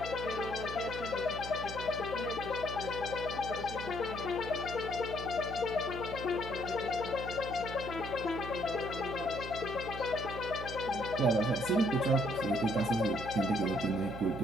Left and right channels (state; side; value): noise; right; hum, 9 dB below the sound